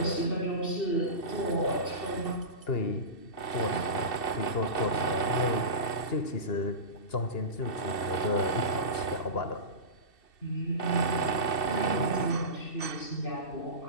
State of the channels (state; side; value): late; right; 2.7 ms